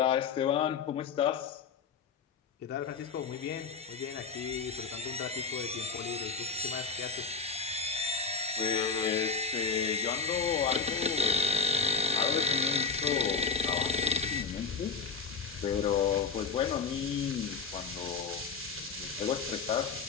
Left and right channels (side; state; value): right; quieter; 5.1 dB